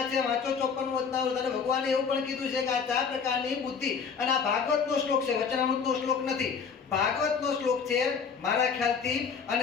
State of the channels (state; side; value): quieter; right; 6.0 dB